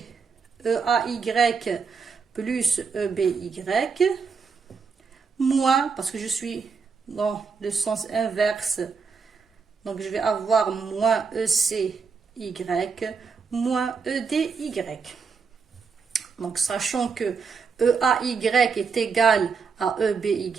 EAY plus EBY, moins, parce que je suis dans le sens inverse, donc je vais avoir moins ECY, moins EDY. Donc, sachant que EAY est égal à EBY,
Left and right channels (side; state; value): left; quieter; 5.4 dB